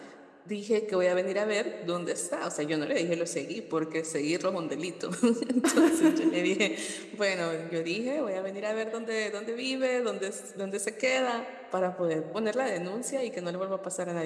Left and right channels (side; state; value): both; identical; correlation 1.00